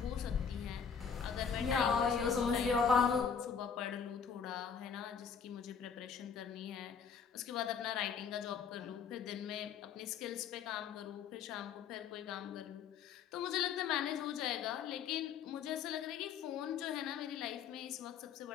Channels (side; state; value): right; quieter; 6.7 dB